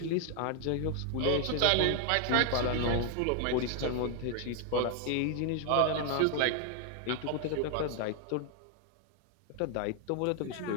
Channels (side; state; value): both; different; correlation 0.00